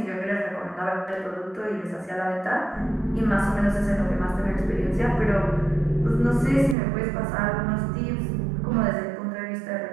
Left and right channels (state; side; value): drops out; left; at 6.8 s